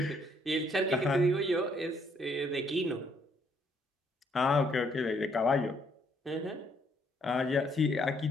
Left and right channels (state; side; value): normal; both; correlation 0.69